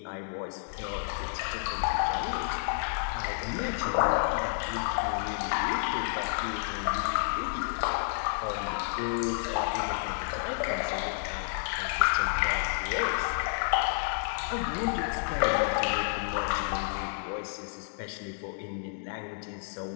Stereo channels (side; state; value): right; silent; digital silence